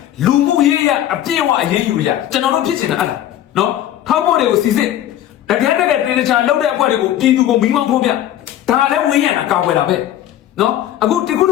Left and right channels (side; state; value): right; quieter; 12.2 dB